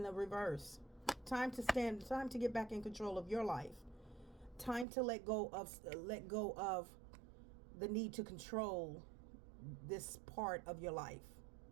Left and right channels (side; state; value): left; drops out; at 4.9 s